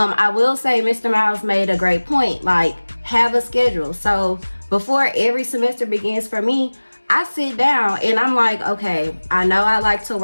will say Mr. Miles made a great point. Like, have a schedule. So before every semester begins for me, I sit down and I'm like, okay, I know I like to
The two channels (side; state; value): both; inverted; correlation -1.00